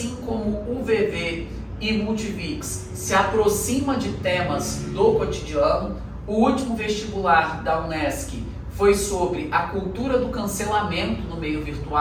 como o UVV e Multivix, se aproxima de temas do cotidiano. O último vestibular da Unesc foi sobre a cultura do cancelamento no meio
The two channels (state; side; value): identical; both; correlation 1.00